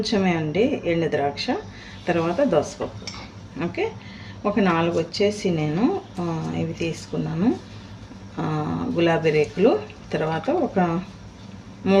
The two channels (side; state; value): both; identical; correlation 1.00